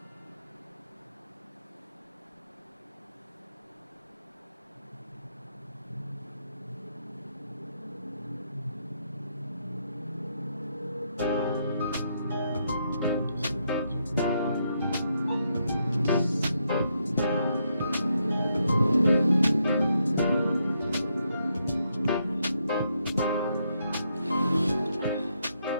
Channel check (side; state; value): both; inverted; correlation -0.78